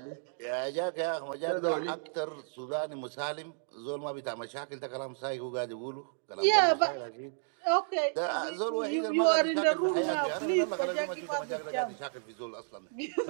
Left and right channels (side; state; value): left; silent; digital silence